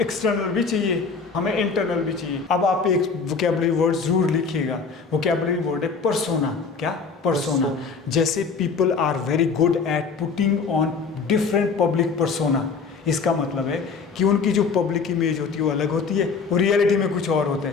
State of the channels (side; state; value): right; quieter; 5.1 dB